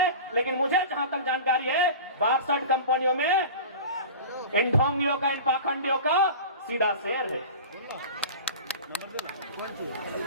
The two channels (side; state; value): both; inverted; correlation -0.34